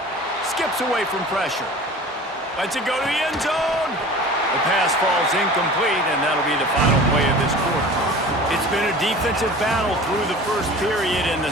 Skips away from pressure. Lets it go to the end zone. The pass falls incomplete, and that'll be the final play of this quarter. It's been a defensive battle through the first period, and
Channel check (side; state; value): both; normal; correlation 0.40